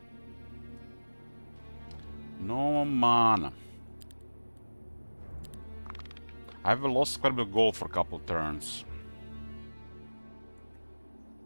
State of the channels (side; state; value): both; inverted; correlation -1.00